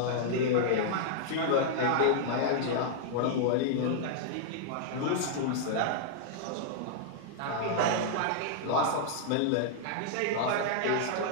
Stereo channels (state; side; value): different; both; correlation -0.01